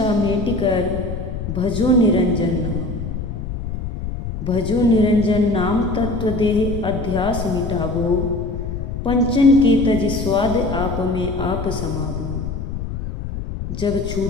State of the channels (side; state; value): left; noise; rumble, 6 dB below the sound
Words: मेट कर भजो निरंजन नाम। भजो निरंजन नाम तत्व देह अध्यास मिटावो, पंचन के तज स्वाद आप में आप समावो। जब